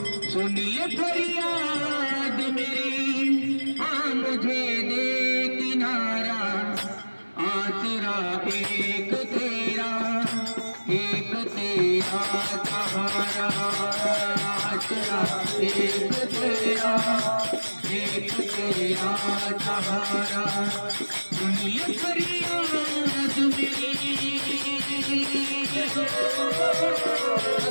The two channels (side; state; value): both; inverted; correlation -1.00